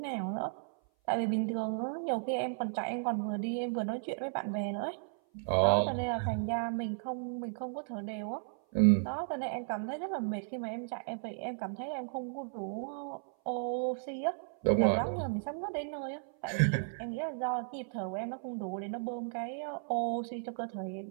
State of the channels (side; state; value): left; silent; 55 dB below the other